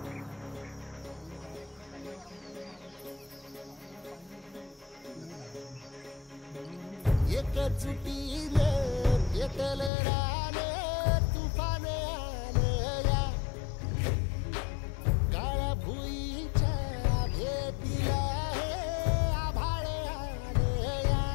एकजुटीने पेटल रान तुफान आलया काळ्या भुईच्या भेटीला हे आभाळ आलया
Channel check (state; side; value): drops out; right; at 9.9 s